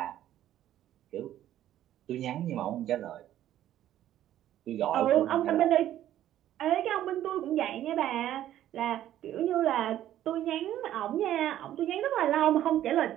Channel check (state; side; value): quieter; left; 12.3 dB